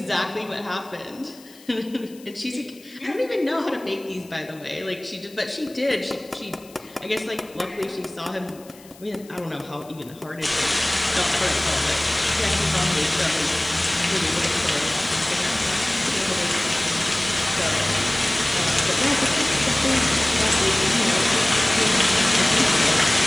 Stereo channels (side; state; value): left; noise; hiss, 24 dB below the sound